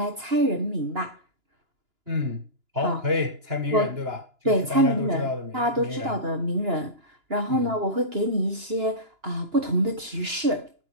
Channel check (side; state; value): left; late; 2.9 ms